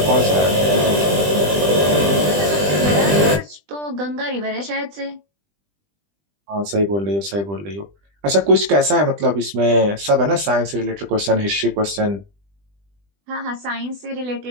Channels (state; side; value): late; left; 20 ms